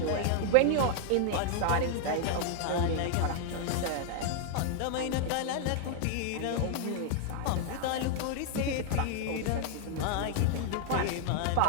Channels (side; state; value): both; different; correlation 0.00